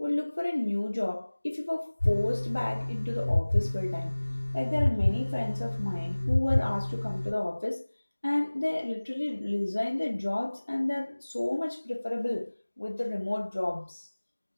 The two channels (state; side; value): inverted; both; correlation -1.00